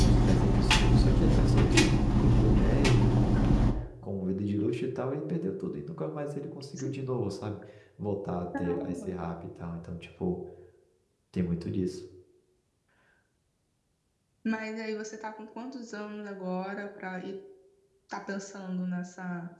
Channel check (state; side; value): identical; both; correlation 1.00